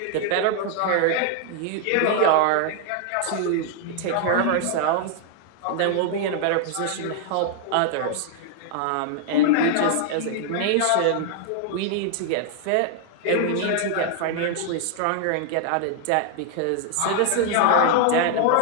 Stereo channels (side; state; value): both; different; correlation 0.00